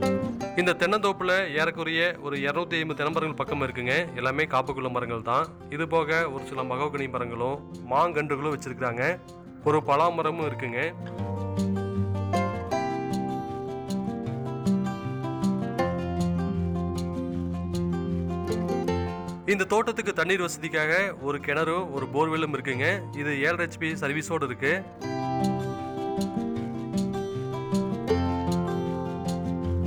இந்த தென்னந்தோப்புல ஏறக்குறைய ஒரு 250 தென்னமரங்கள் பக்கம் இருக்குங்க. எல்லாமே காப்புக்குள்ள மரங்கள் தான். இது போக ஒரு சில மகோகனி மரங்களும் மாங்கன்றுகளும் வச்சிருக்காங்க. ஒரு பலாமரமும் இருக்குங்க. இந்த தோட்டத்துக்கு தண்ணீர் வசதிக்காக ஒரு கிணறும் ஒரு போர்வெல்லும் இருக்குங்க. இது 7 HP சர்வீஸோடு இருக்கு.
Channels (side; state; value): both; identical; correlation 1.00